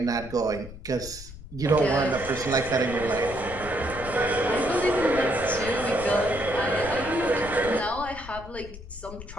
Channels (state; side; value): noise; left; rumble, 14 dB below the sound